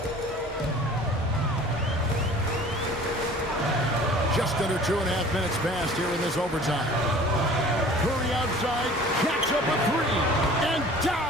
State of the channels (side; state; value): both; normal; correlation 0.47